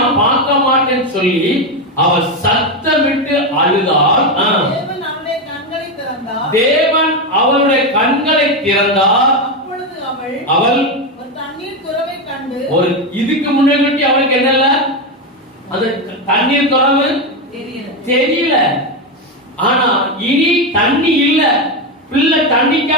பார்க்க மாட்டேன்னு சொல்லி அவள் சத்தமிட்டு அழுதாள். தேவன் அவளுடைய கண்களை திறந்தார். அவள் ஒரு இதுக்கு முன்னாடி அவளுக்கு என்னல்ல, அந்த தண்ணீர் துறவு தெரியல. ஆனா இனி தண்ணி இல்ல. பிள்ளை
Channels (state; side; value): normal; both; correlation 0.10